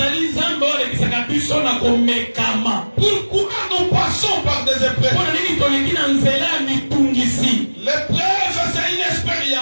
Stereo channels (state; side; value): inverted; both; correlation -1.00